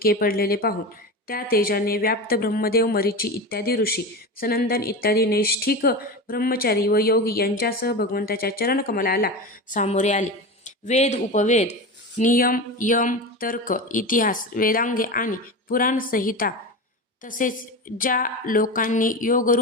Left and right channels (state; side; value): normal; both; correlation 0.25